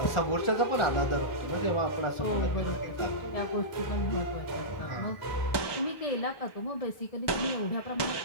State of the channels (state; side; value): late; right; 1.2 ms